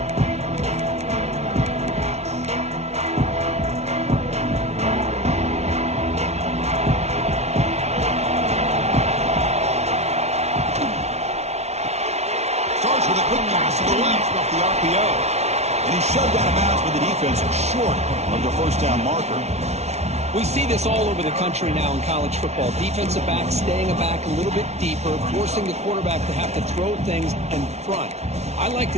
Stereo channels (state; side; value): late; left; 0.31 ms